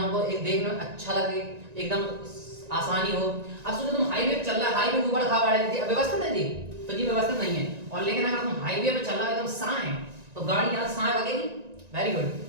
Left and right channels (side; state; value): left; late; 1.9 ms